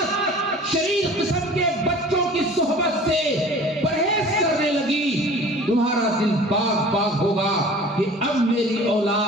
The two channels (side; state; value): both; normal; correlation 0.44